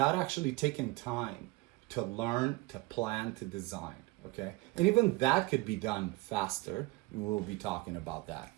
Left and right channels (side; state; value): left; quieter; 22.4 dB